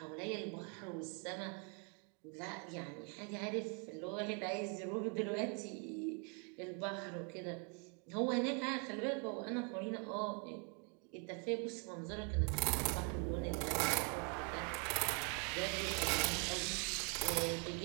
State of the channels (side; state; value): left; quieter; 37.5 dB